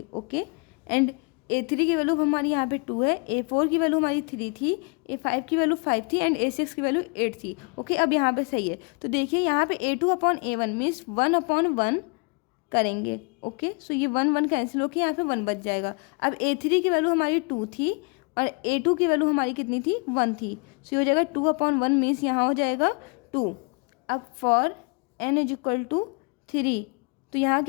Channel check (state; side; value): quieter; right; 33.2 dB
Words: ओके, एंड a3 की वैल्यू हमारी यहाँ पे 2 है, a4 की वैल्यू हमारी 3 थी, a5 की वैल्यू 5 थी, एंड a6 की वैल्यू 8 थी। ओके, अब यहाँ पे सही है। तो देखिए यहाँ पे a2 अपॉन a1 मीन्स 1/1 करेंगे। ओके, सो ये 1 कैंसिल होकर यहाँ पे 1 बच जाएगा। अब A3 की वैल्यू हमारी 2 थी और A2 की वैल्यू हमारी कितनी थी, 1 थी। सो ये हो जाएगा 2/1 मीन्स यहाँ हो जाएगा 2। अब for n is equal to 3, तो यहाँ